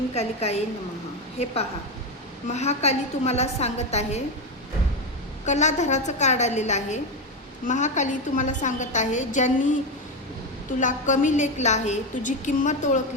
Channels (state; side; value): normal; both; correlation 0.12